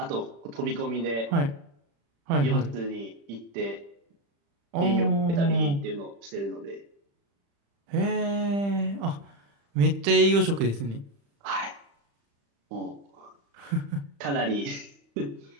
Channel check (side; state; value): left; late; 35 ms